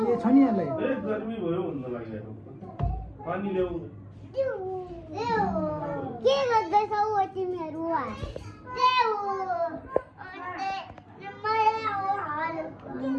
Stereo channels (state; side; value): identical; both; correlation 1.00